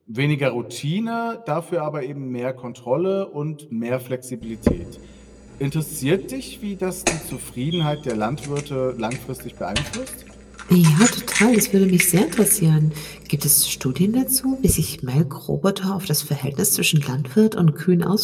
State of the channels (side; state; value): both; identical; correlation 1.00